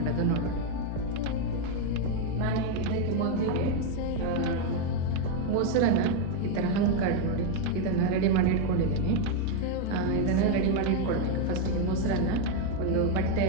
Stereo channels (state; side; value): different; both; correlation 0.01